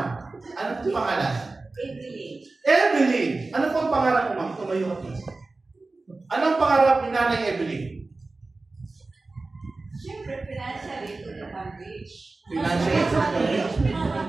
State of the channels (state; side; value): quieter; left; 3.4 dB